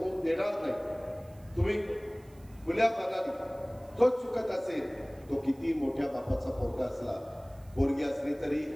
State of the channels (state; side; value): noise; right; hiss, 28 dB below the sound